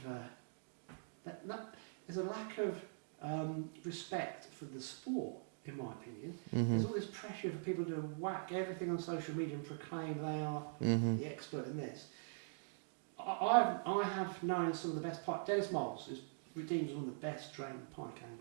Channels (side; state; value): left; silent; digital silence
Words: there's a lack of respect for the sport, in my opinion. There's all this pressure for people to whack everything on social media and proclaim they are the expert in this. I have known some of the best pike. Dennis Moles is redeemed as one of the best trained pike